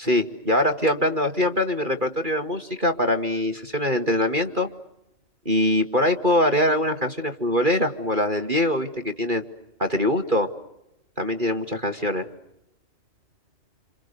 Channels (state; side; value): late; left; 2.4 ms